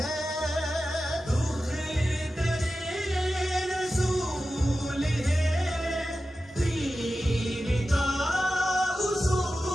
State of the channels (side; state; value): both; normal; correlation 0.93